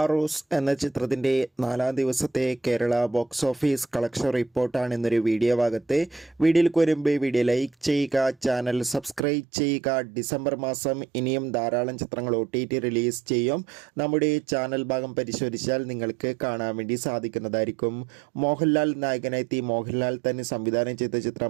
എന്ന ചിത്രത്തിൻ്റെ 4-ാം ദിവസത്തെ കേരള ബോക്സ് ഓഫീസ് കളക്ഷൻ റിപ്പോർട്ടാണ് ഇന്നൊരു വീഡിയോ ഭാഗത്ത്. വീഡിയോയിലേക്ക് വരുമ്പോൾ വീഡിയോ ലൈക്ക് ചെയ്യുക, ചാനൽ സബ്സ്ക്രൈബ് ചെയ്യുക. ഡിസംബർ മാസം ഇനിയും ധാരാളം ചിത്രങ്ങൾ OTT റിലീസ് ചെയ്യും. നമ്മുടെ ചാനൽ ഭാഗം പരിശോധിച്ചാൽ നിങ്ങൾക്ക് കാണാൻ വേണ്ടി സാധിക്കുന്നതായിരിക്കും. മോഹൻലാൽ നായകനെത്തി മോഹൻലാൽ തന്നെ സംവിധാനം ചെയ്ത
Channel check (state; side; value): drops out; left; at 9.2 s